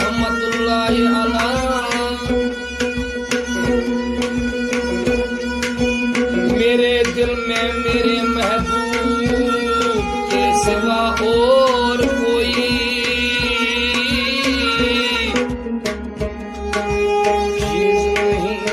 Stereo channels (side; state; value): both; identical; correlation 1.00